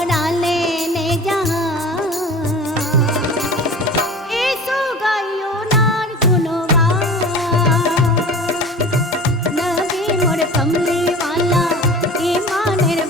लेने जहाँ ऐसो गायो नार गुनवान। नबी मोर कमली वाला ईमानेर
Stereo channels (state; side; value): normal; both; correlation 0.38